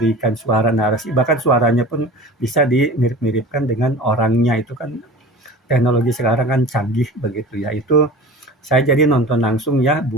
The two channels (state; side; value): normal; both; correlation 0.37